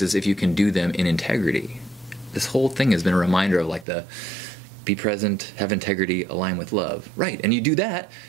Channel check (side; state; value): left; drops out; at 3.9 s